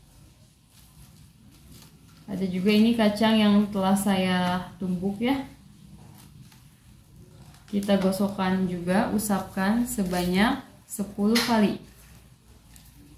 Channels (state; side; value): identical; both; correlation 1.00